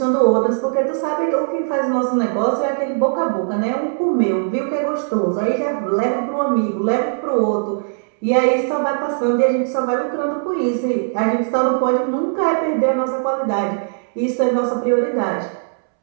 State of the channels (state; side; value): silent; left; 66 dB below the other